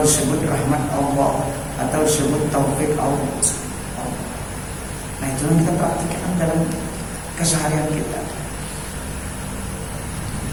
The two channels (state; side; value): identical; both; correlation 1.00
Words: rahmat Allah, atau disebut taufik Allah. Nah, itu yang kita praktikkan dalam keseharian kita.